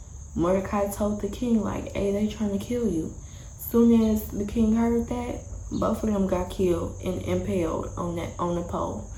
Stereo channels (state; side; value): identical; both; correlation 1.00